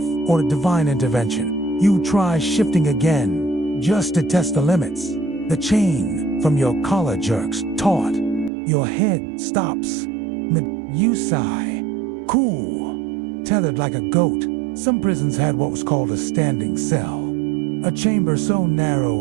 or a divine intervention. You try shifting again, just to test the limits. The chain from your collar jerks taut. Your head stops. You sigh. Cool. Tethered like a goat. Some prisons had what was called a standing cell. A chamber so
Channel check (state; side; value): drops out; left; at 8.5 s